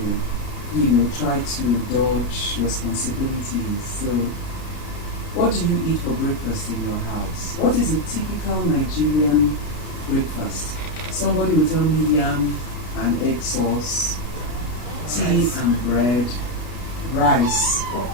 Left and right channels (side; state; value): right; late; 33 ms